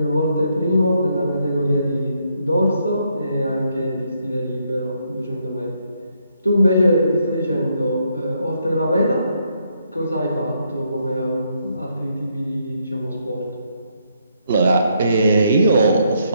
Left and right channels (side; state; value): both; inverted; correlation -0.75